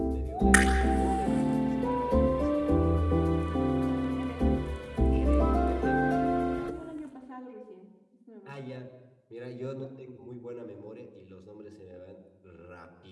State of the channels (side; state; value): both; identical; correlation 1.00